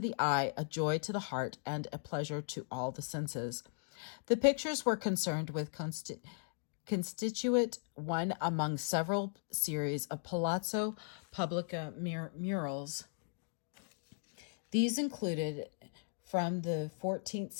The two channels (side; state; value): right; silent; digital silence